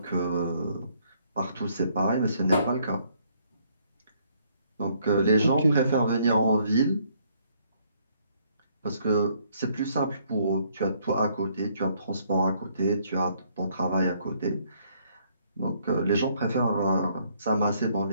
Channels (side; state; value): both; inverted; correlation -0.67